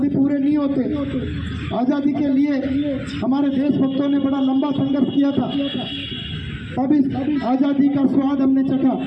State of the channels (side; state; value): both; identical; correlation 1.00